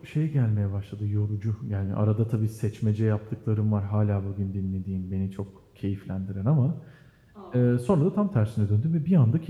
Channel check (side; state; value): both; identical; correlation 1.00